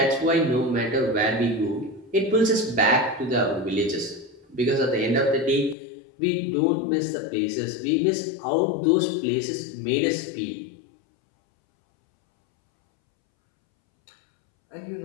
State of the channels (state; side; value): drops out; right; at 5.8 s